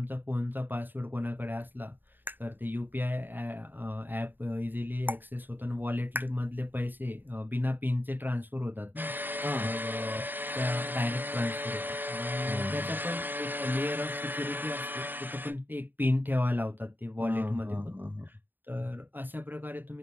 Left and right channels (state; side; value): late; left; 0.092 ms